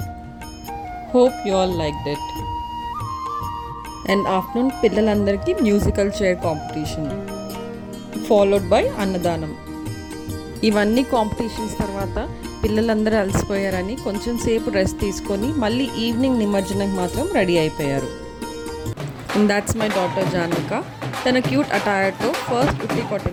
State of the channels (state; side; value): identical; both; correlation 1.00